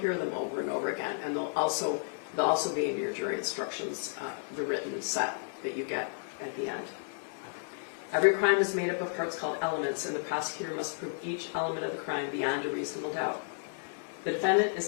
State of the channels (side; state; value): right; silent; 56 dB below the other